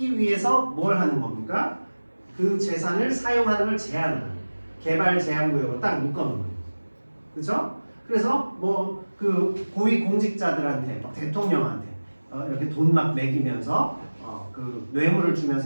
위해서 뭘 하는 겁니까? 그 재산을 사용하는 걸 제한하는 거예요. 개발 제한구역으로 딱 묶어놓는 거예요. 그렇죠? 그래서 뭐 그 고위 공직자들한테 대통령한테 이렇게 돈 막 매기면서 그 뇌물을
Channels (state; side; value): inverted; both; correlation -1.00